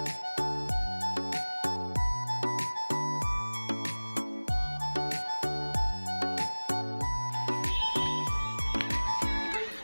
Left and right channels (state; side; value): inverted; both; correlation -1.00